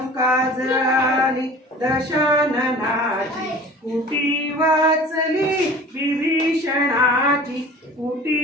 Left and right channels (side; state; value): both; normal; correlation 0.42